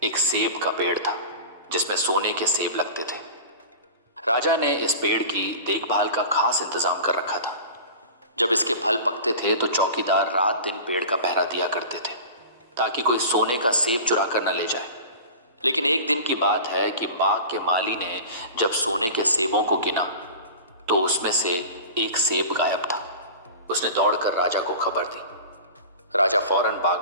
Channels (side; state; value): both; inverted; correlation -0.36